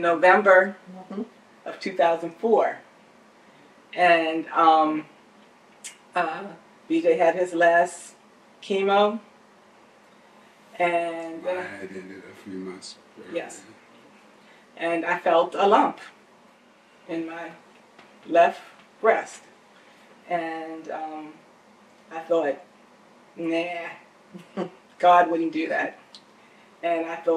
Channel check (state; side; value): identical; both; correlation 1.00